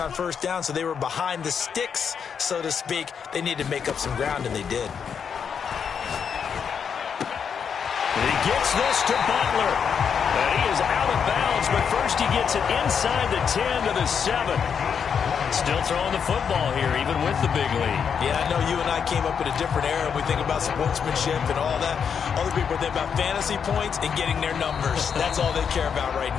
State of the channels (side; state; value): right; quieter; 7.0 dB